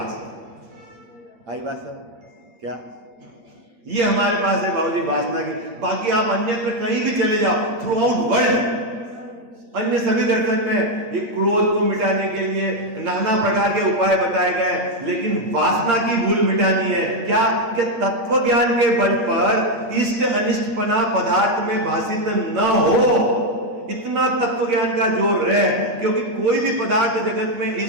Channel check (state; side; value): late; left; 8.6 ms